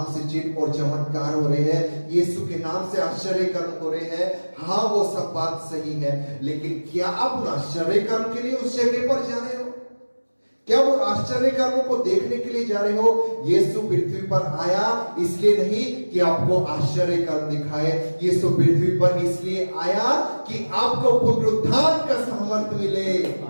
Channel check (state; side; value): inverted; both; correlation -1.00